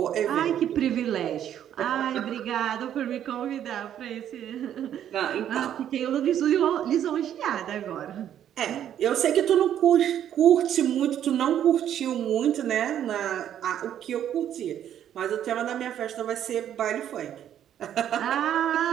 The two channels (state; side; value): quieter; left; 10.3 dB